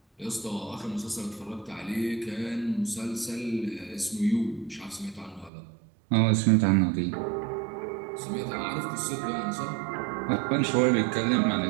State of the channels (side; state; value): left; drops out; at 5.5 s